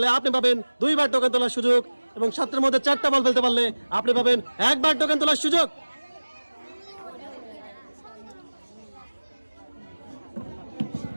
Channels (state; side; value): inverted; both; correlation -1.00